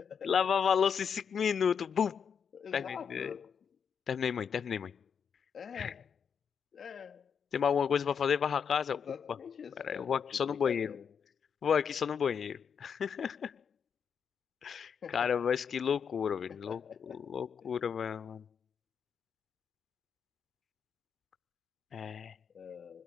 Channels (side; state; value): right; quieter; 7.0 dB